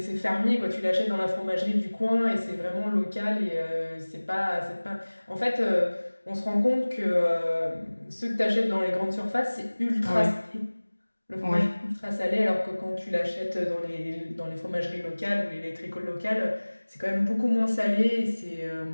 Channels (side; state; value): both; inverted; correlation -1.00